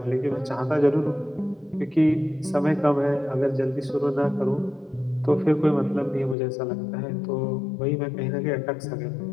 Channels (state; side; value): drops out; right; at 6.4 s